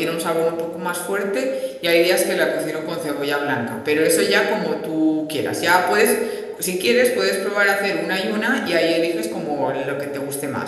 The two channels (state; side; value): identical; both; correlation 1.00